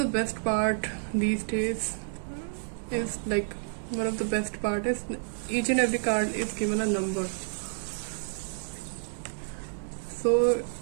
best part these days is each and every card is given a number, so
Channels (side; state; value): left; silent; digital silence